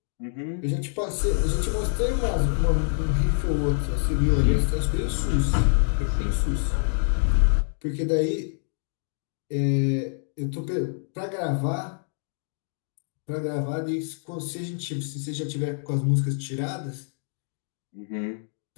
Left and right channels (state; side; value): silent; right; digital silence